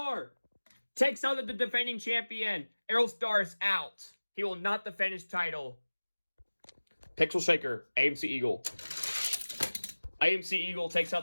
takes out the defending champion. Aerostar is out. He will not defend his title. Pixel Shaker, AMC Eagle. AMC Eagle takes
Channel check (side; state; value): both; inverted; correlation -1.00